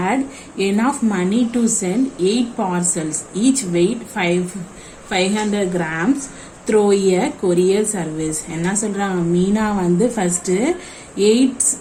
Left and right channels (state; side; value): identical; both; correlation 1.00